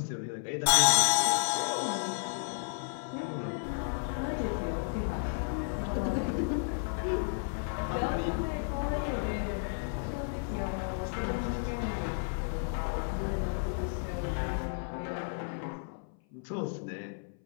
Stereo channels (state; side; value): silent; right; 56 dB below the other